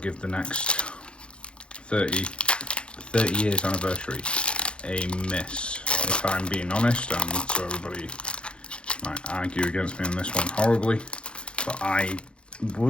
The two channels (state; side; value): late; right; 0.056 ms